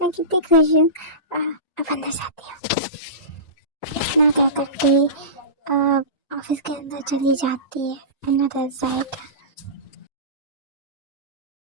कितनी खुश हूँ। अब अंदर जाती हूँ। इतना क्या करके ऑफिस के अंदर चली जाती है। Another side.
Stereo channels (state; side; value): late; right; 1.9 ms